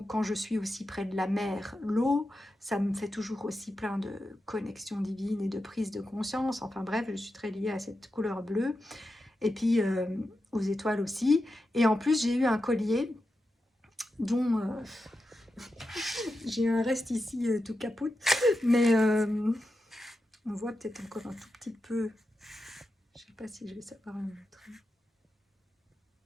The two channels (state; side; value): normal; both; correlation 0.89